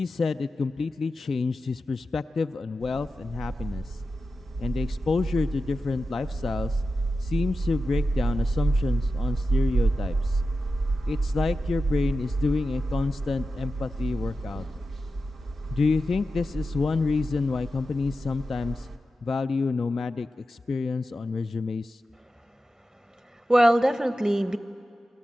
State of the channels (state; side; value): normal; both; correlation 0.91